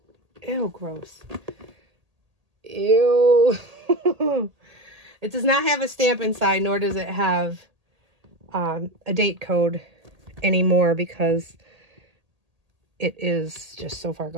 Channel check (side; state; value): left; late; 1.8 ms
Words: gross. Ew. It does not have a stamp inside, nor does it have a date code anymore, because it is just so far